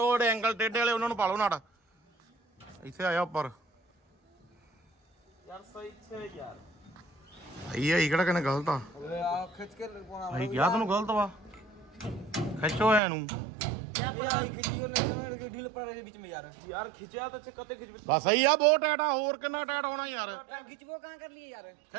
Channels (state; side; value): drops out; left; at 13.0 s